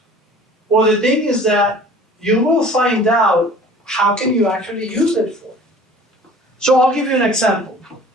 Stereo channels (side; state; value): both; normal; correlation 0.47